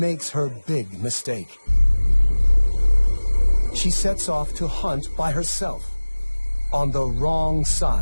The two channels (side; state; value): both; inverted; correlation -1.00